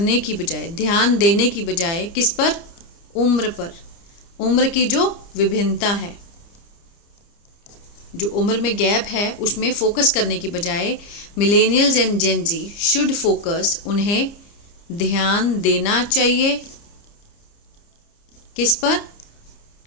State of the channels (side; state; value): right; late; 30 ms